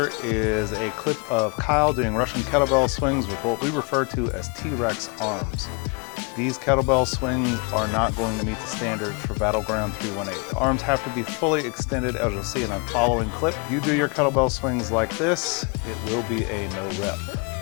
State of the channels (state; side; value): quieter; right; 32.9 dB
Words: is a clip of Kyle doing Russian kettlebell swings with what we refer to as T-Rex arms. These kettlebell swings are not going to meet the standards for Battleground 318. The arms have to be fully extended, as you'll see in the following clip. If you do your kettlebell swings like this, it will be a no rep.